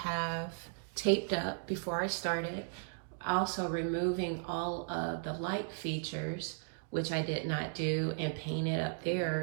taped up before I started. Also removing all of the light features, which I did not do, and paint it up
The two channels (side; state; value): left; silent; digital silence